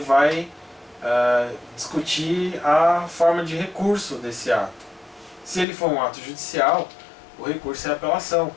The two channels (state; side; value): drops out; right; at 5.7 s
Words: discutir a forma de recurso desse ato. Se ele for um ato judicial, o recurso é a apelação.